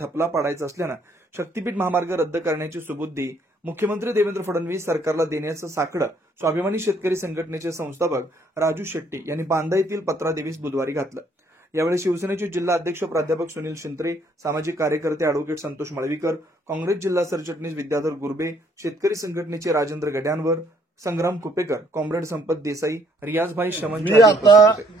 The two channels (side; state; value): both; normal; correlation 0.66